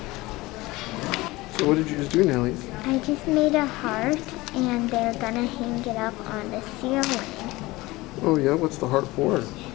So what did you just do, Nellie? I just made a heart and they're gonna hang it up on the ceiling. Oh yeah, what's the heart for? For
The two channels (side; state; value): right; quieter; 20.5 dB